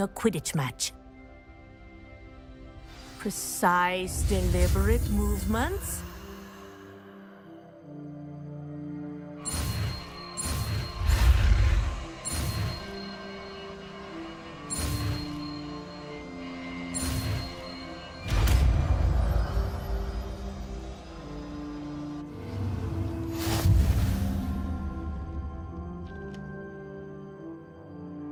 Quidditch match. Precise, deliberate movements.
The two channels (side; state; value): both; identical; correlation 1.00